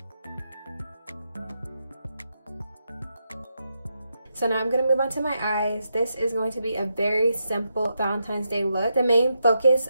So now I'm going to move on to my eyes. This is going to be a very simple Valentine's Day look. The main focus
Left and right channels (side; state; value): both; inverted; correlation -0.84